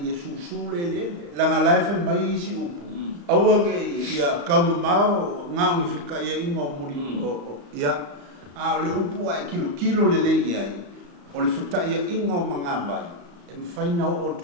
ia susule langa life mai isi upu awange ia kau mau ngau fika ia ingo muri ia le upu ai kilo le ia o le feta ia ingo manga vai e mfaina o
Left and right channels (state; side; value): late; left; 35 ms